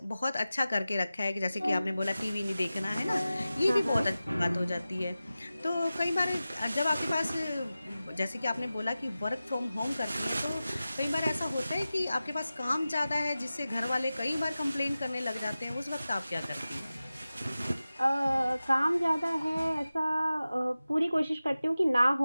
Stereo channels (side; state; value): both; inverted; correlation -0.95